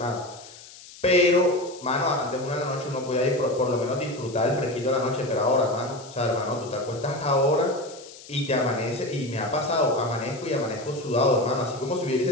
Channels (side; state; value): left; noise; hiss, 18 dB below the sound